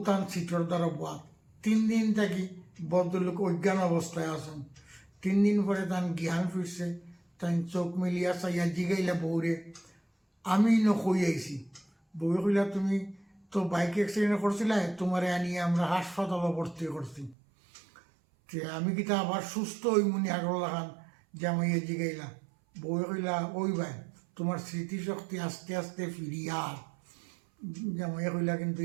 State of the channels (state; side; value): drops out; left; at 17.4 s